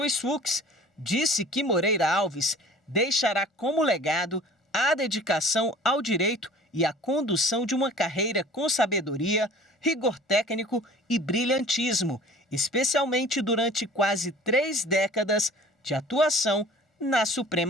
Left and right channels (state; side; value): normal; both; correlation 0.46